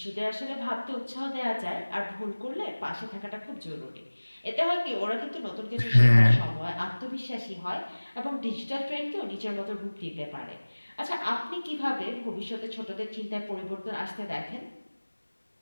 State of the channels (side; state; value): both; inverted; correlation -1.00